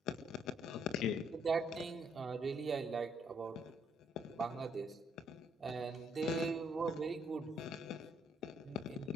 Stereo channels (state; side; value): normal; both; correlation 0.69